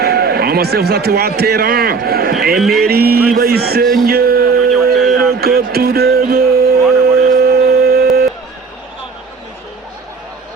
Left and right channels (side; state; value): left; quieter; 4.8 dB